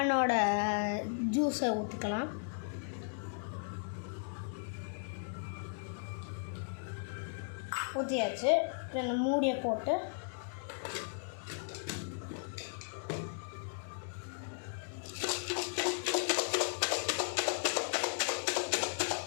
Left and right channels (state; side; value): silent; right; digital silence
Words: ஜூஸை ஊற்றிக்கலாம். ஊற்றியாச்சு. இந்த மூடியை போட்டு